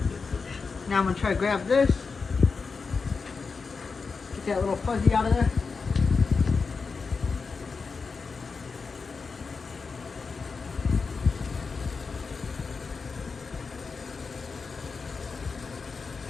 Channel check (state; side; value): quieter; right; 4.8 dB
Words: Now I'm gonna try to grab this, get that little fuzzy out of there.